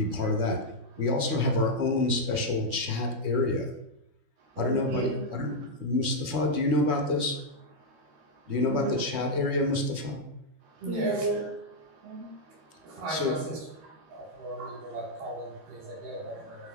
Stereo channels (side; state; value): left; late; 12 ms